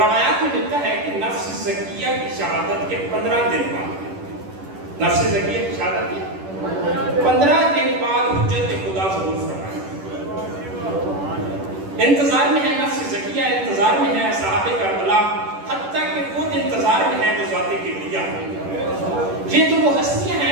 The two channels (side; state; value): left; late; 10 ms